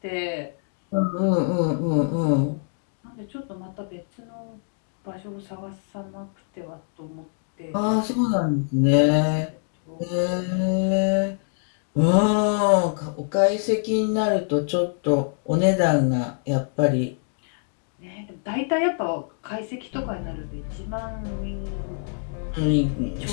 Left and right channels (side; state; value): right; silent; 62 dB below the other